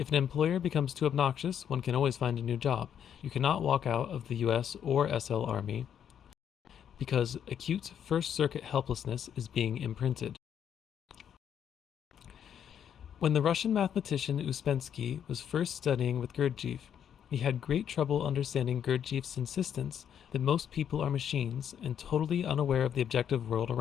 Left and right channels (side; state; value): right; quieter; 8.9 dB